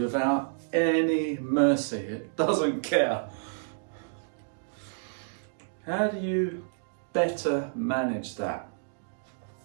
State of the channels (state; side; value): silent; left; digital silence